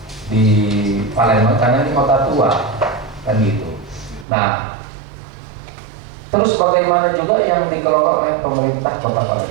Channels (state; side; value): drops out; left; at 4.2 s